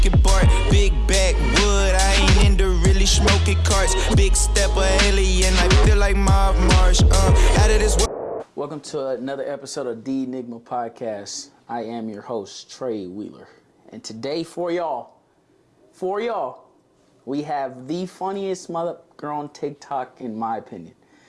Bart. Big backwood, I ain't into really smoking carts. Big step of alien, I feel like Mob Marsh. Out of this world. Welcome to another episode of the Enigma podcast. I am your host, Trey Wheeler. And today for y'all, we have the funniest mother girl on TikTok, in my opinion.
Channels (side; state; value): both; identical; correlation 1.00